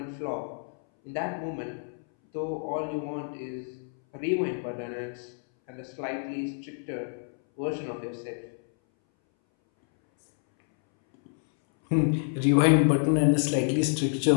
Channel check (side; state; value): right; silent; 59 dB below the other